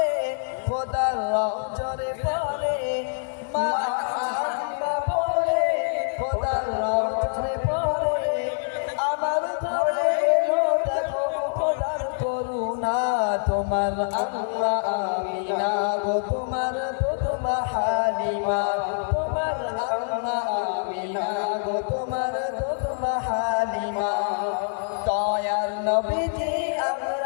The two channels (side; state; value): right; silent; digital silence